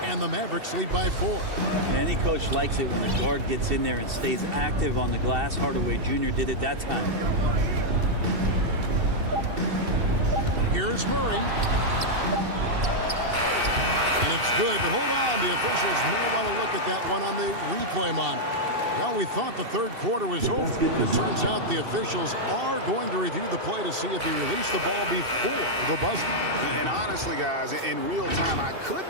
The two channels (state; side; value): late; left; 2.7 ms